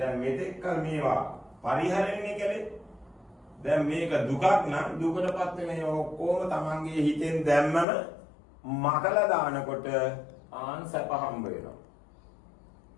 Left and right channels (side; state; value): right; drops out; at 7.9 s